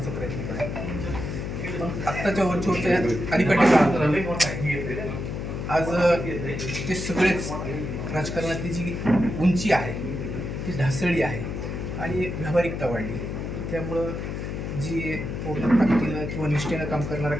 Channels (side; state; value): left; noise; hum, 5 dB below the sound